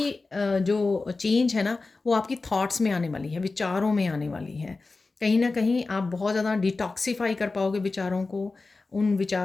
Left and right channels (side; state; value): right; quieter; 3.7 dB